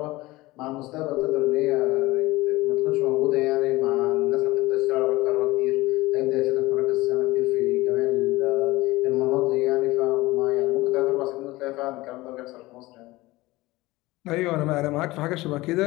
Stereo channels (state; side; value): quieter; right; 19.8 dB